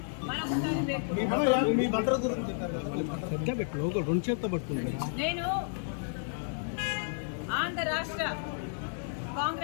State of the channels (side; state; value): right; silent; 57 dB below the other